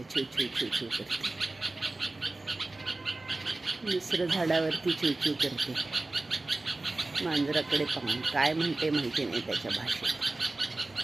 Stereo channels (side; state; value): left; quieter; 3.0 dB